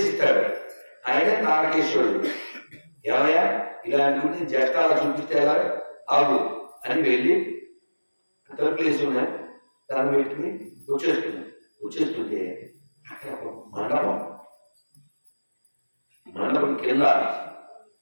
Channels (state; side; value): inverted; both; correlation -1.00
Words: ఆయన తారకేశ్వరుడు. ఏమయ్యా ఇలాంటి జట్టాలు చూపిస్తే ఎలా ఆగు అని వెళ్ళి తలుపులేసి ఉన్నాయి దాన్ని పెట్టుకుని వచ్చేస్తుంటే అక్కడ మండపం కింద